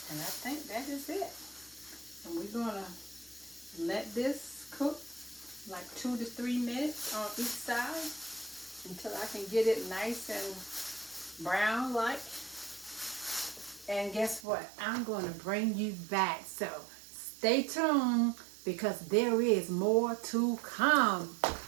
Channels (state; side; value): drops out; left; at 14.5 s